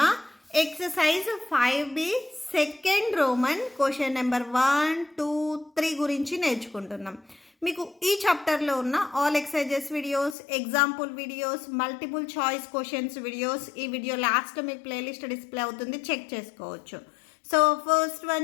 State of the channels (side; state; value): right; drops out; at 10.4 s